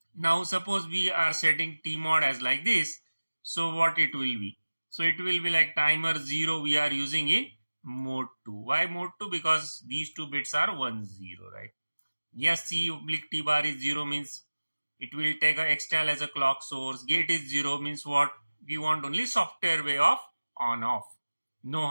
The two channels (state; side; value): inverted; both; correlation -1.00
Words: Now, suppose we are setting TMOD as like this. So, what it will be? So, it will be like timer 0 we are using in mode 2. Why mode 2? Because these 2 bits are 1, 0, right? Yes, C oblique T bar is 0 means it will take a extal as a clock source. Gate is 0 means what? We want only software way of on off, no